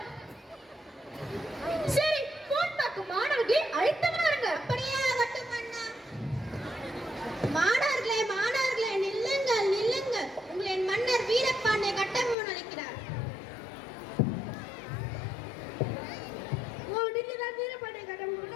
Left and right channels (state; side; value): drops out; right; at 12.4 s